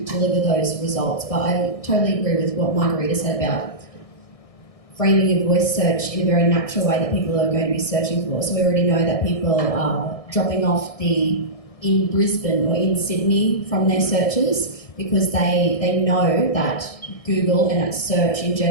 deliver those results. But I totally agree with what Margarita said about framing your voice search in a very natural way that people are going to be searching for. So we already know that people are dropping off in Brisbane or in Sydney from their searches because they know that Google and that search in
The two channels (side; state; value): right; late; 1.6 ms